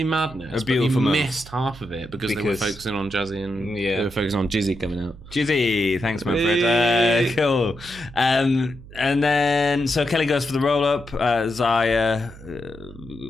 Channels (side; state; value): right; noise; hum, 18 dB below the sound